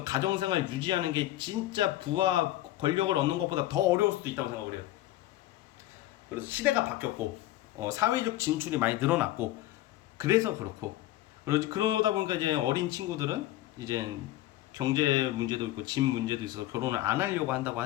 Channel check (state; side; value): quieter; right; 15.4 dB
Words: 가정 생활 유지하는 게 진짜 부와 권력을 얻는 것보다 더 어려울 수도 있다고 생각을 해요. 그래서 시대가 바뀌었고 사회적 진출이 많이 늘어났고 그래서 그렇고 그러다 보니까 이제 어린 친구들은 이제 경제 문제도 있고 집 문제도 있어서 결혼을 안 하려고 한다고